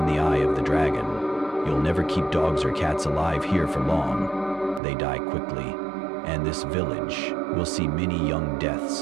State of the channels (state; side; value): drops out; left; at 4.8 s